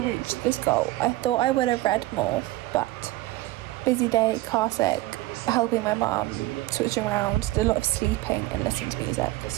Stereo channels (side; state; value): left; quieter; 17.8 dB